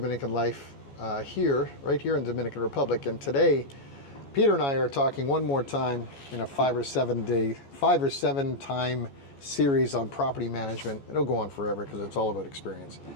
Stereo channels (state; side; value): late; right; 14 ms